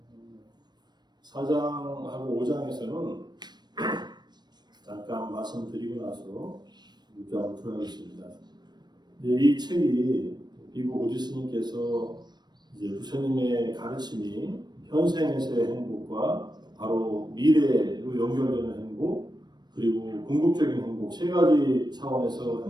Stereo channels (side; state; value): left; late; 0.21 ms